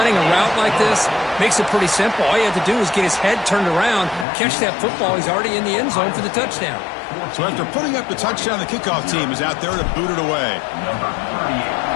a route like this, makes it pretty simple. All you have to do is get his head turned around, catch that football. He's already in the end zone for the touchdown. So after putting up the touchdown, the kickoff team is out there to boot it away.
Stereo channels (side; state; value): right; drops out; at 4.2 s